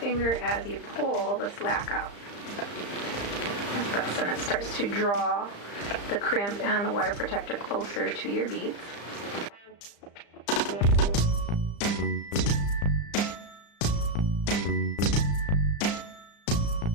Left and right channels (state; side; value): late; right; 35 ms